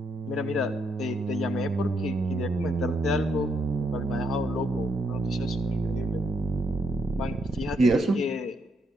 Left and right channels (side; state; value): both; normal; correlation 0.75